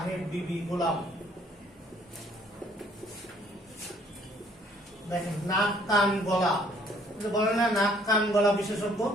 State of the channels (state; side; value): normal; both; correlation 0.62